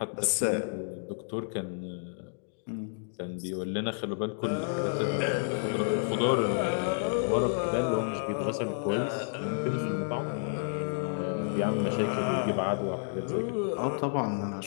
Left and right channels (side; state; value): right; silent; digital silence